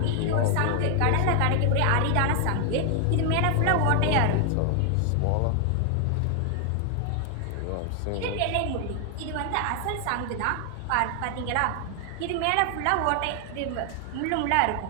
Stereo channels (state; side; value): different; both; correlation 0.00